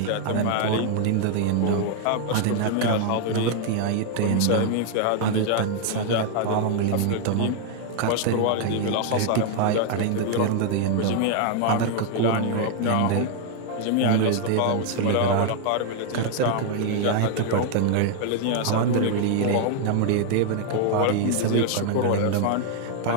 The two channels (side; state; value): both; different; correlation 0.00